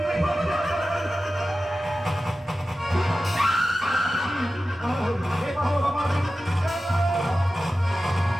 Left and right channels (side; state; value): both; normal; correlation 0.94